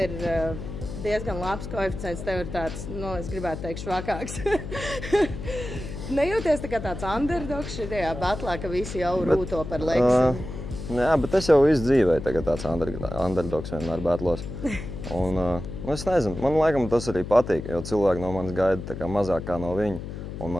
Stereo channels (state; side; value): noise; left; hum, 8 dB below the sound